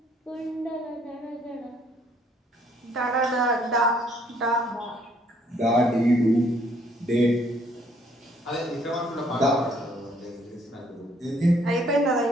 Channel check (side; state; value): both; normal; correlation 0.65